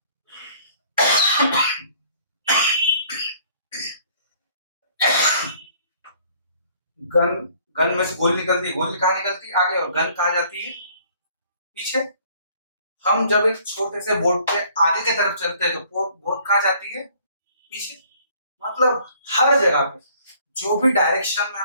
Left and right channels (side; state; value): both; inverted; correlation -0.58